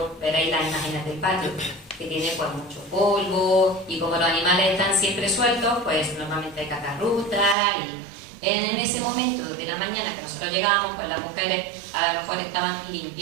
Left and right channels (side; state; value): left; drops out; at 7.6 s